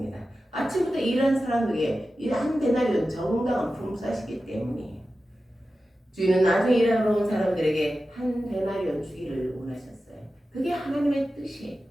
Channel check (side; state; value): both; normal; correlation 0.93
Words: 아침부터 일하는 사람에게 한 데나리온 정당한 품삯이기 때문이에요. 주인은 나중에 일하러 온 사람들에게 한 데나리온 주기를 원하셨어요. 그게 하나님의 뜻이에요.